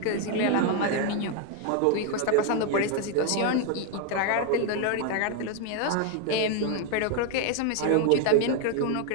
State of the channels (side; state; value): both; different; correlation 0.01